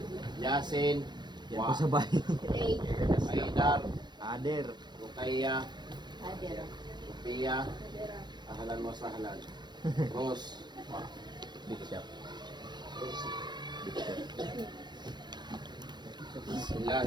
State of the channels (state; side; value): late; left; 0.21 ms